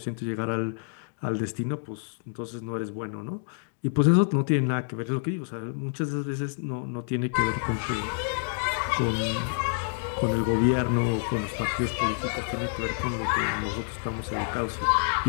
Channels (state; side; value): silent; right; digital silence